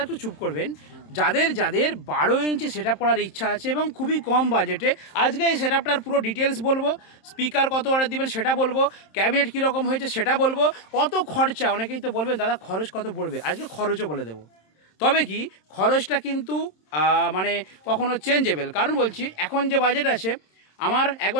একটু চুপ করবেন, যাদের 12 ইঞ্চি সেটআপ করার ইচ্ছা আছে এবং খুবই কম বাজেটে, আজকে এই সেটআপটার পুরো ডিটেলস বলবো। স্পিকার কত অর্ডার দিবেন সেটা বলবো, ক্যাবিনেট কীরকম হয়েছে সেটা বলবো, কত খরচা। অনেকেই তো বলবেন দাদা খরচ কত পড়বে, আজকে খরচও বলে দেবো। তবে কি খরচটা কিন্তু মানে কখনো চেঞ্জেবল, কারণ বলছি এখন যে বাজেট আছে, আমার 1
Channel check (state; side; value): late; right; 27 ms